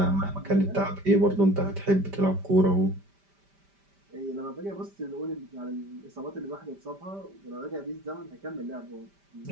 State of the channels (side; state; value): left; late; 5.1 ms